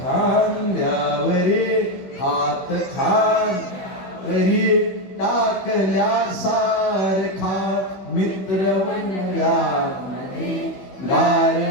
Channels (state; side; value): late; right; 16 ms